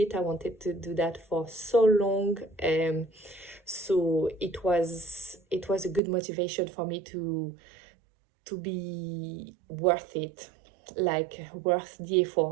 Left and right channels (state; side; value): drops out; left; at 6.0 s